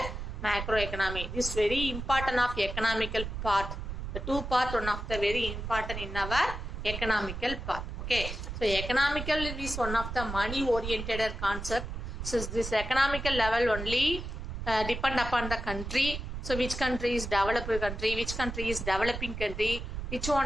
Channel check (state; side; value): noise; right; rumble, 6 dB below the sound